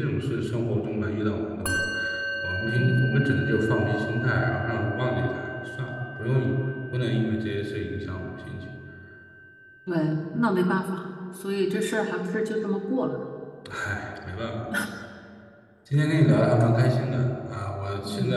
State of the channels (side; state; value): both; identical; correlation 1.00